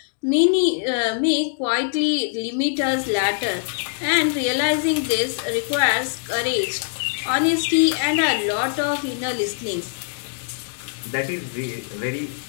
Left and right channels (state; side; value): silent; right; digital silence